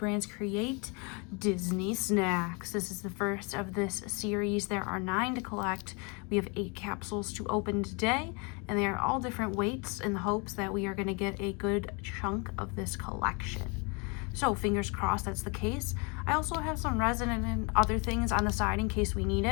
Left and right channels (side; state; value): right; quieter; 32.2 dB